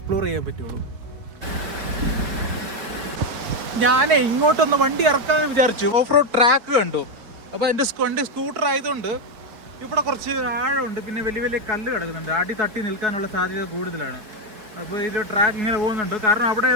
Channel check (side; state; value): left; late; 4.7 ms